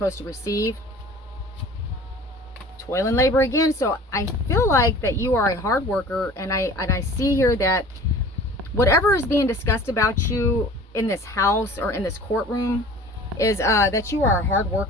to receive. Toil and labor again. So I feel like that you are a hard worker, and I see here that whatever is being discussed about you in this house or in this courtroom is that you are a hard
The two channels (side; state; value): both; normal; correlation 0.44